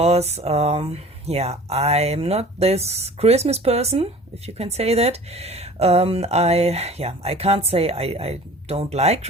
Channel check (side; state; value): both; normal; correlation 0.44